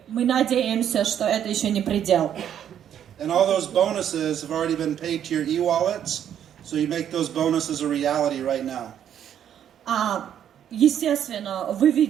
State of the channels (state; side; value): quieter; left; 9.7 dB